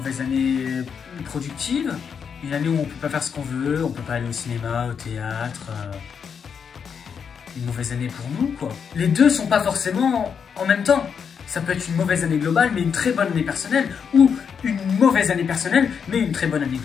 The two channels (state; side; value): quieter; right; 6.8 dB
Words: année productive, une année où on peut pas faire ce qu'on veut, on peut pas aller au cinéma, au théâtre, une mauvaise année pour nous, quoi. Les deux sont pas forcément en même temps. Ça peut être une mauvaise année globale, mais une très bonne année personnelle, ou une mauvaise année personnelle, mais une très bonne année